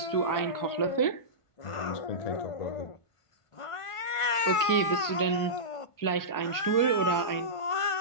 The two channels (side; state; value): right; late; 1.5 ms